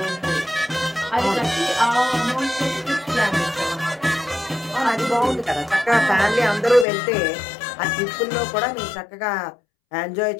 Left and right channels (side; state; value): right; drops out; at 6.9 s